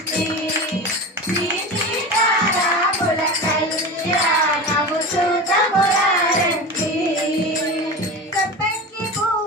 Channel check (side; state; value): both; normal; correlation 0.28